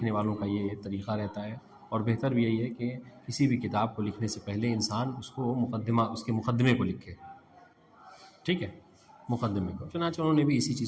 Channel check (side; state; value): both; identical; correlation 1.00